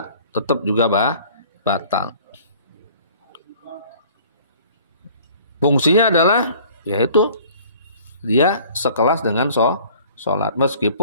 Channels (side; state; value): both; inverted; correlation -0.51